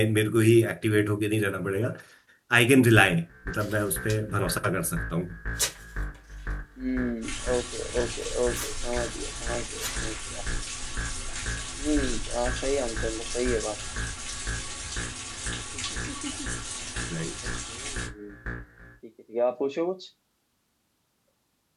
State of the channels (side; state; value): both; identical; correlation 1.00